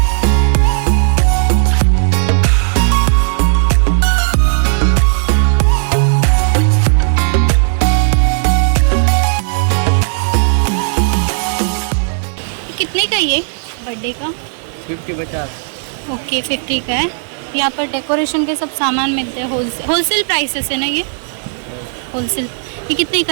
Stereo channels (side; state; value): left; silent; digital silence